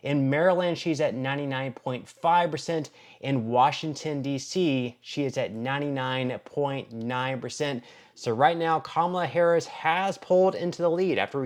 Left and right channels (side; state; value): both; identical; correlation 1.00